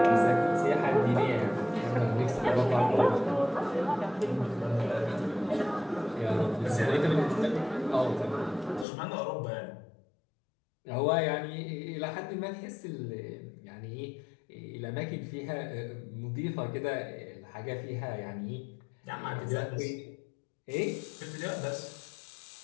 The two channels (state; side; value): drops out; right; at 8.8 s